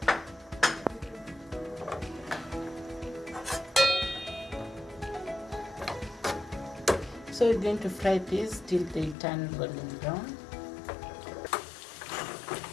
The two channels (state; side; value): drops out; right; at 9.2 s